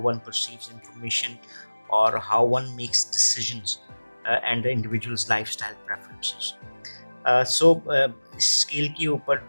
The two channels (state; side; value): inverted; both; correlation -1.00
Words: वन परसीव्स इंफॉर्मेशन और how one makes decisions and the individual's lifestyle preferences. So इस स्केल के ऊपर